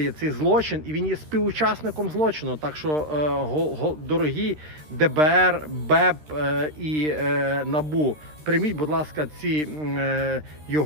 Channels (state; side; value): late; left; 13 ms